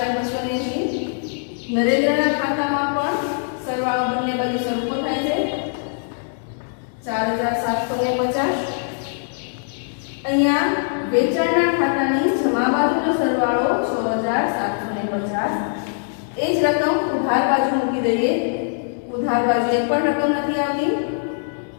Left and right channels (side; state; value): right; silent; digital silence